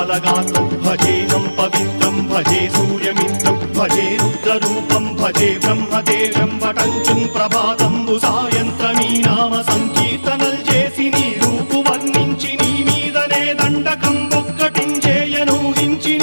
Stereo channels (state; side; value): inverted; both; correlation -1.00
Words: భజేహం పవిత్రం భజే సూర్యమిత్రం భజే రుద్రరూపం భజే బ్రహ్మదేవం వటంచుం ప్రభాతంబు సాయంత్రమీ నామ సంకీర్తనల్ చేసి నీ రూపు వర్ణించి నీ మీదనే దండకం ఒక్కటించేయనూహించి